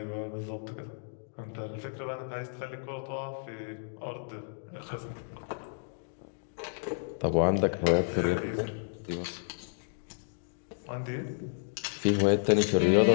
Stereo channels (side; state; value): right; silent; digital silence